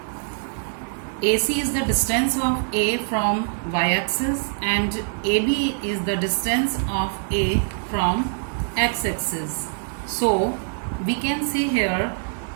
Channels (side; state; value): left; silent; digital silence